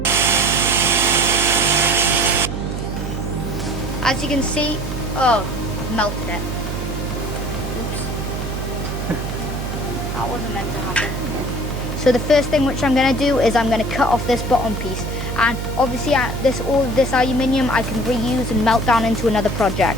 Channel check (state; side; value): noise; right; hum, 4 dB below the sound